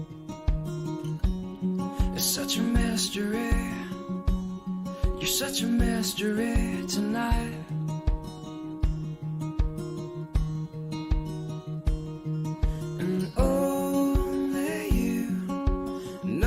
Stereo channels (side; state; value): both; identical; correlation 1.00